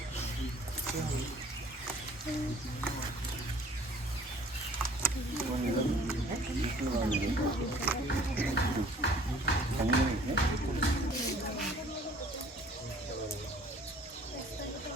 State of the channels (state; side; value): normal; both; correlation 0.54